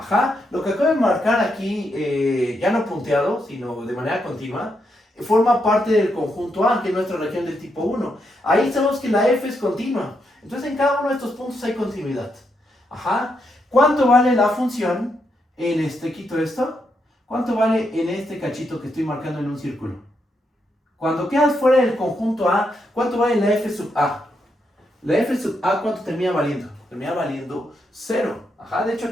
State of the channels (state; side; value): normal; both; correlation 0.80